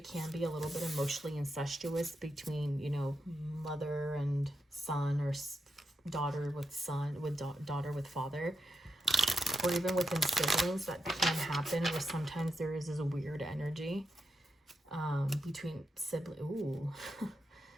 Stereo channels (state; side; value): normal; both; correlation 0.86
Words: can be a little bit emotionally incestuous between, you know, mother and son, or daughter with son, with daughter with father, or even within siblings. That can happen where sometimes there is this weird energy between